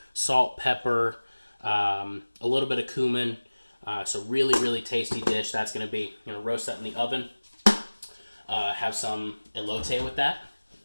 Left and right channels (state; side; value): inverted; both; correlation -1.00